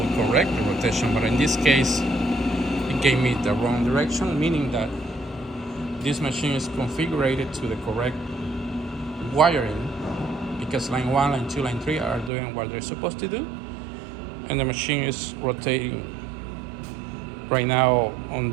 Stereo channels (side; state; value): left; drops out; at 12.3 s